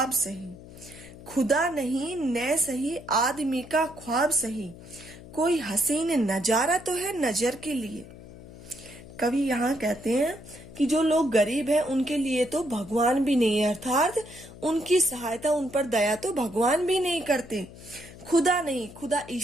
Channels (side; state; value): left; noise; hum, 17 dB below the sound